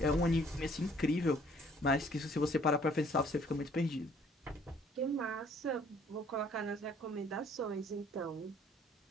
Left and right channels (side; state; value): both; normal; correlation 0.59